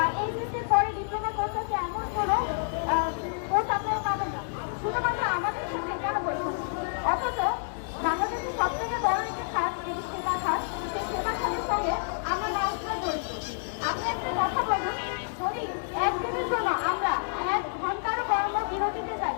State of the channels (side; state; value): right; silent; 59 dB below the other